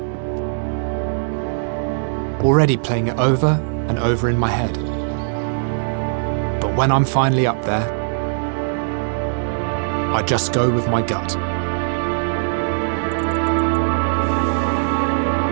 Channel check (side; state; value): left; silent; digital silence